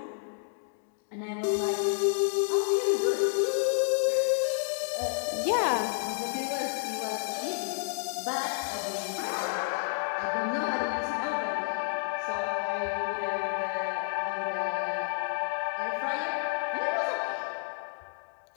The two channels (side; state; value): right; silent; 58 dB below the other